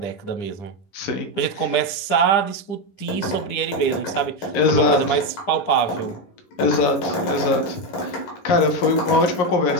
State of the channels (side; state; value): right; late; 10 ms